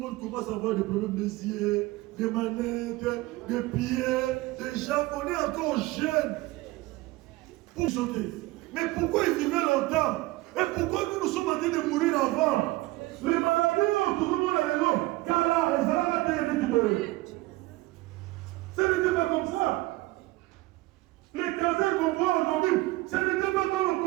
commence à avoir des problèmes des yeux, des manettes, des pieds, des jambes. On est encore jeunes pour sauter. Mais pourquoi ils vivaient longtemps? Et pourquoi nous sommes en train de mourir avant? Les maladies, tout le monde est là. Car là, ils ont la terre de ce n'était pas comme ça. Les cancers qu'on voit aujourd'hui, ce n'était pas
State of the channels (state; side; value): quieter; left; 19.8 dB